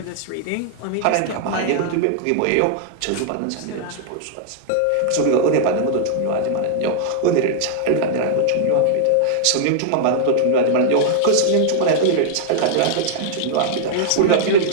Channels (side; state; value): both; different; correlation -0.01